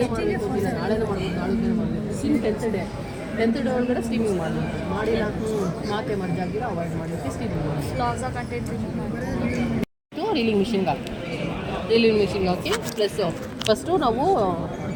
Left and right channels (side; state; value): both; identical; correlation 1.00